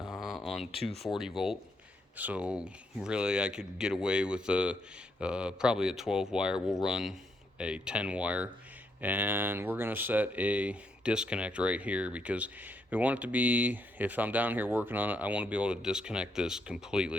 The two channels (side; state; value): both; normal; correlation 0.77